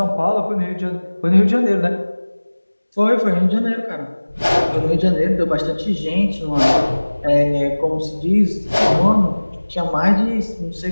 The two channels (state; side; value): inverted; both; correlation -1.00